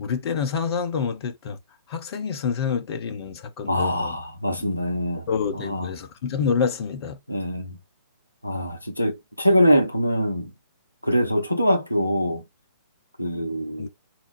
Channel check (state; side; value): inverted; both; correlation -0.75